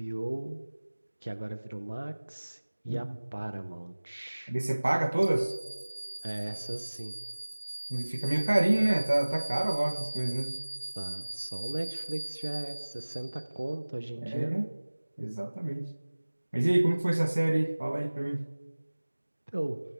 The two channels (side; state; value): both; inverted; correlation -1.00